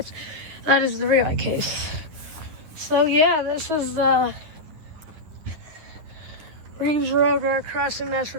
That is the relay case. So yeah, this is Reeves Road crossing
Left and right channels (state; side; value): late; left; 10 ms